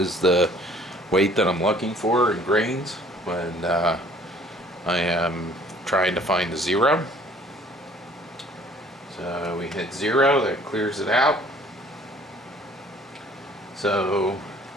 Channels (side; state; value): both; normal; correlation 0.55